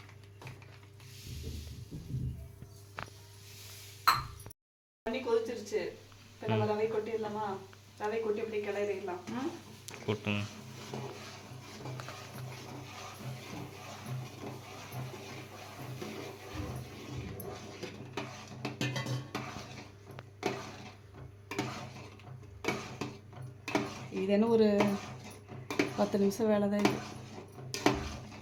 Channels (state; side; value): identical; both; correlation 1.00